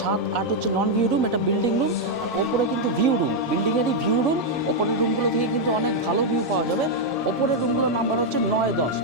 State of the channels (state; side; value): normal; both; correlation -0.01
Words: 7-8 হচ্ছে নন ভিউ রুম, এটা বিল্ডিং রুম। আর ওপরে কিন্তু ভিউ রুম, বিল্ডিংয়েরই ভিউ রুম। ওপরের রুমগুলো থেকে কিন্তু অনেক ভালো ভিউ পাওয়া যাবে। ওপরের রুমগুলোর নাম্বার হচ্ছে 9-10।